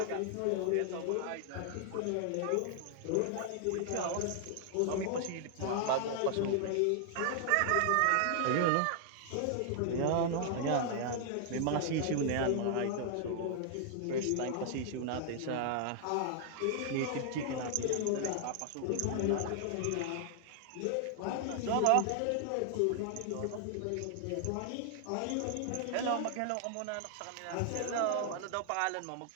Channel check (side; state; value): both; different; correlation 0.00